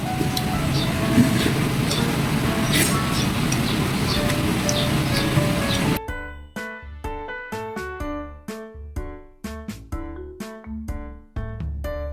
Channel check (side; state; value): both; identical; correlation 1.00